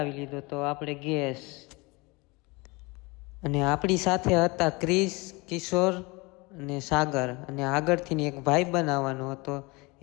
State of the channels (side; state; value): right; quieter; 25.7 dB